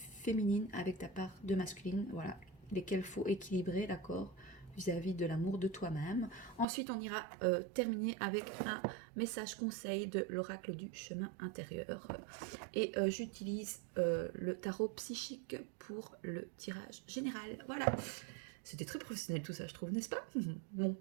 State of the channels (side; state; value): left; drops out; at 6.7 s